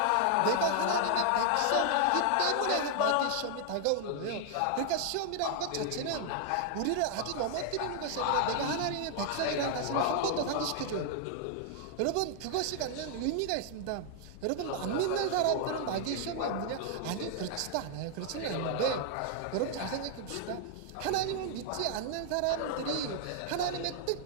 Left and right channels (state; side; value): different; both; correlation 0.00